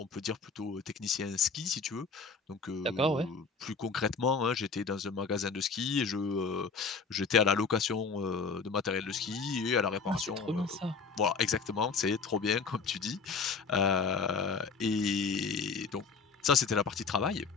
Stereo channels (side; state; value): right; quieter; 4.9 dB